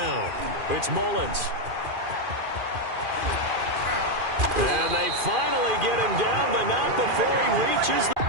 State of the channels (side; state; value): left; late; 2.4 ms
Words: It's Mullins. And they finally get him down, but not before he reaches the...